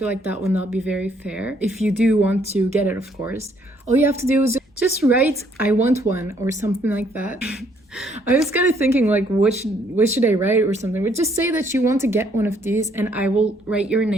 like that would not be very fair. If you do want to get it, of course, all you have to do is just write "I want one" or something like that. I was kind of thinking like what should I write or something, but just say that you want to get one of these, and I will write your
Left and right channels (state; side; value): normal; both; correlation 0.67